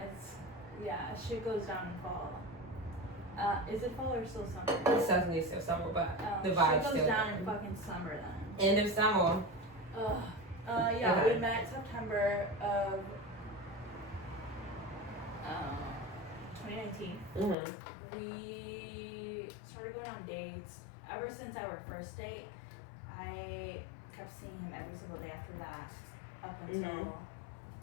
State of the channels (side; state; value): right; drops out; at 17.6 s